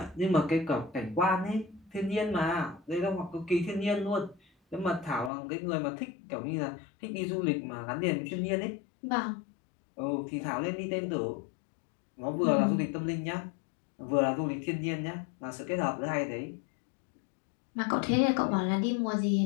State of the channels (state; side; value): drops out; right; at 5.3 s